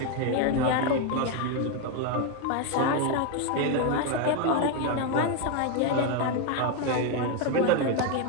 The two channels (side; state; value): both; different; correlation 0.01